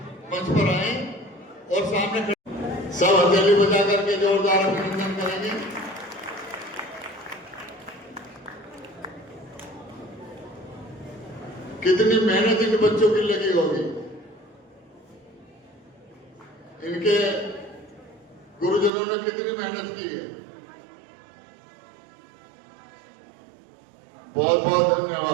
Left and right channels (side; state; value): left; drops out; at 18.9 s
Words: मंच पर आए और सामने सब हथेली बजा करके जोरदार अभिनंदन करेंगे। कितनी मेहनत इन बच्चों की लगी होगी। इनके गुरुजनों ने कितनी मेहनत की है। बहुत बहुत